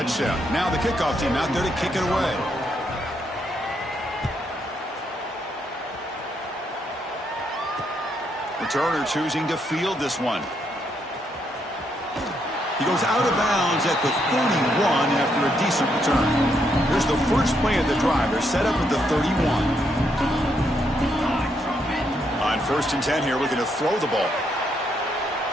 Now the kickoff team out there to kick it away. Returner choosing to field this one. He goes out of bounds at the 41 after a decent return. Here's the first play of the drive. They're set up at the 31. On 1st and 10 here, looking to throw the ball.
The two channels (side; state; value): both; normal; correlation 0.76